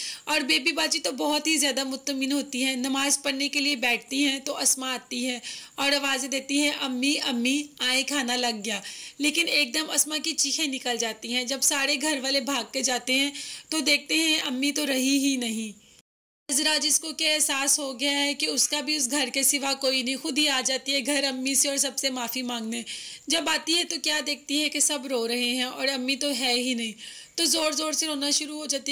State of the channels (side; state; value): both; identical; correlation 1.00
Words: और बेबी बाजी तो बहुत ही ज़्यादा मुतमईन होती हैं। नमाज़ पढ़ने के लिए बैठती हैं तो अस्मा आती है और आवाज़ें देती हैं अम्मी अम्मी आए खाना लग गया, लेकिन एकदम अस्मा की चीखें निकल जाती हैं। जब सारे घर वाले भाग के जाते हैं तो देखते हैं अम्मी तो रही ही नहीं। नजरा जिसको क्या एहसास हो गया है कि उसका भी उस घर के सिवा कोई नहीं, खुद ही आ जाती है घर अम्मी से और सबसे माफ़ी मांगने। जब आती है तो क्या देखती है कि सब रो रहे हैं और अम्मी तो है ही नहीं, तो ज़ोर ज़ोर से रोना शुरू हो जाती